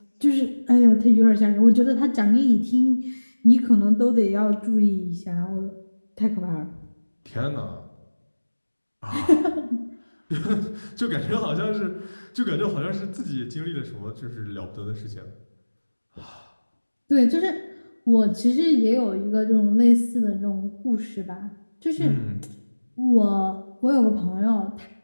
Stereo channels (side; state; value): both; inverted; correlation -1.00